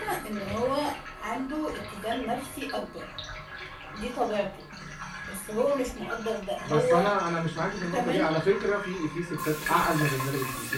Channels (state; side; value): identical; both; correlation 1.00